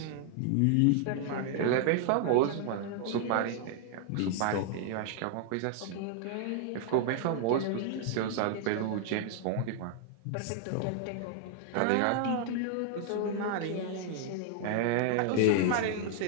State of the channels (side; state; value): both; different; correlation 0.00